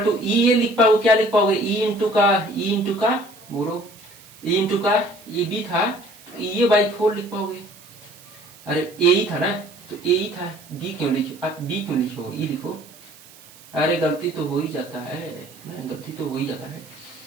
टू ई ये लिख पाओगे, क्या लिख पाओगे? ई इंटू का बोलो, ई इंटू का ये बी था, ये बाई 4 लिख पाओगे। अरे ए ही था ना, तो ए ही था, बी क्यों लिखो? आप बी क्यों लिखो? ई लिखो। अरे गलती तो हो ही जाता है ना, गलती तो हो ही जाता है।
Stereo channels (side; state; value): right; noise; hiss, 22 dB below the sound